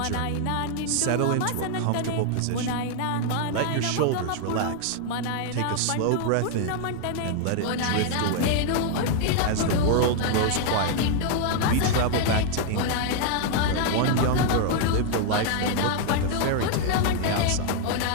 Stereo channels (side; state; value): both; different; correlation 0.00